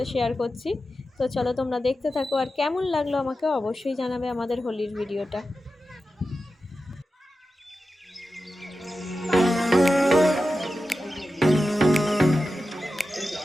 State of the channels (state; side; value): normal; both; correlation 0.92